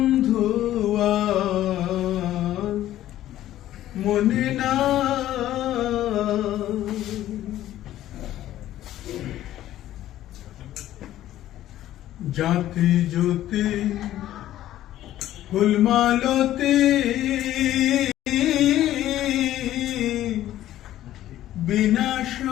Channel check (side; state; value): right; quieter; 13.3 dB